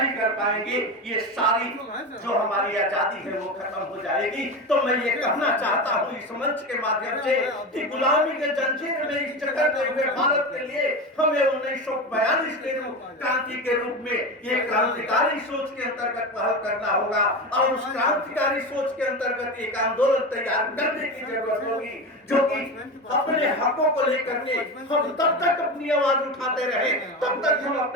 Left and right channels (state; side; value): normal; both; correlation 0.23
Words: कर पाएंगे। ये सारी जो हमारी आजादी है वो खत्म हो जाएगी। तो मैं ये कहना चाहता हूँ इस मंच के माध्यम से कि गुलामी के जंजीर में इस जकड़ते हुए भारत के लिए हमें 1942 के क्रांति के रूप में ये क्रांतिकारी सोच के अंतर्गत पहल करना होगा और उस क्रांतिकारी सोच के अंतर्गत एक आंदोलन तैयार करने की जरूरत होगी, जो कि अपने हकों को लेकर के हम तब तक अपनी आवाज उठाते रहे, तब तक हम